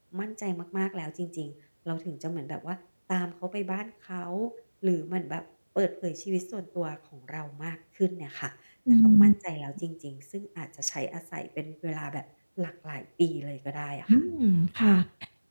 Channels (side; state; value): both; inverted; correlation -1.00